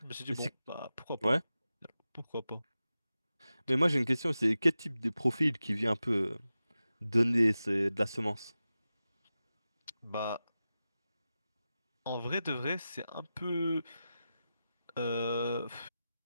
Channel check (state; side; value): inverted; both; correlation -0.93